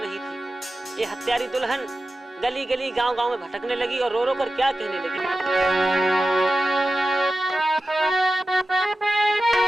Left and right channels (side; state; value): both; normal; correlation 0.94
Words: नहीं थी। ये हत्यारी दुल्हन गली गली गांव गांव में भटकने लगी और रो रो कर क्या कहने लगी।